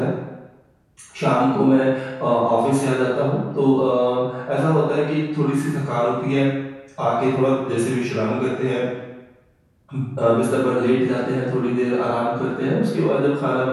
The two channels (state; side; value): identical; both; correlation 1.00